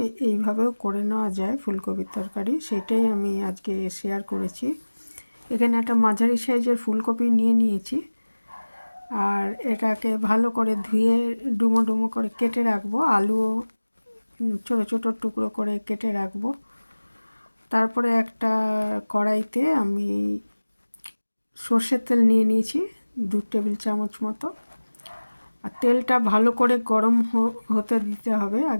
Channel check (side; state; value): both; inverted; correlation -1.00